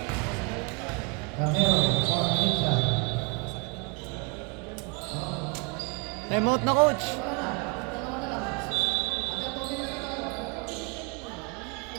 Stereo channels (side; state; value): left; quieter; 32.1 dB